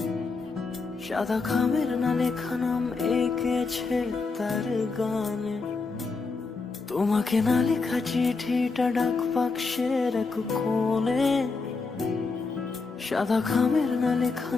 সাদা খামের না লেখা নাম এঁকেছে তার গানে। তোমাকে না লেখা চিঠিটা ডাক বাক্সের এক কোণে, সাদা খামের না লেখা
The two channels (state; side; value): quieter; right; 4.2 dB